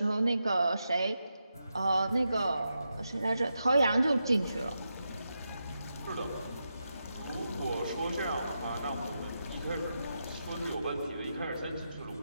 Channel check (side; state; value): both; inverted; correlation -0.87